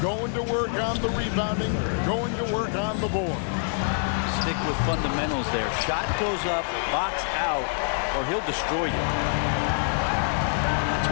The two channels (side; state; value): right; silent; digital silence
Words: going to work on the rebounding, going to work on the board. basic with fundamentals there. Shot goes up, box out, or he'll destroy you. That's